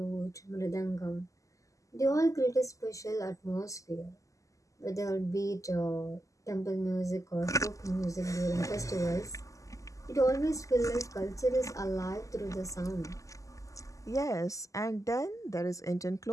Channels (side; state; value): right; late; 0.16 ms